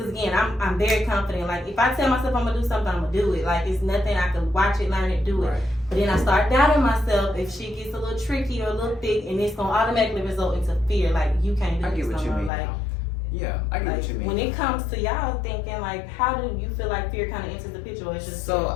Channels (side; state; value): right; drops out; at 12.5 s